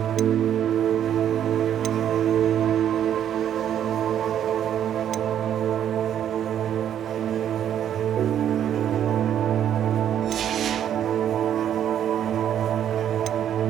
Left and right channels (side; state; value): left; quieter; 10.0 dB